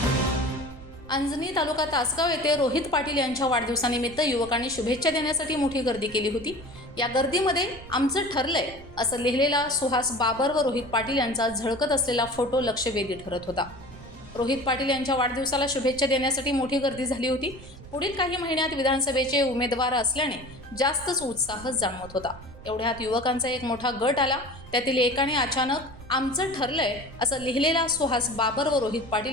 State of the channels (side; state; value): right; noise; rumble, 18 dB below the sound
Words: अंजनी तालुका तासगाव येथे रोहित पाटील यांच्या वाढदिवसानिमित्त युवकांनी शुभेच्छा देण्यासाठी मोठी गर्दी केली होती। या गर्दीमध्ये आमचं ठरलंय असं लिहिलेला सुहास बाबर व रोहित पाटील यांचा झळकत असलेला फोटो लक्षवेधी ठरत होता। रोहित पाटील यांच्या वाढदिवसाला शुभेच्छा देण्यासाठी मोठी गर्दी झाली होती। पुढील काही महिन्यात विधानसभेचे उमेदवार असल्याने जास्तच उत्साह जाणवत होता। एवढ्यात युवकांचा एक मोठा गट आला। त्यातील एकाने अचानक आमचं ठरलंय असं लिहिलेला सुहास बाबर व रोहित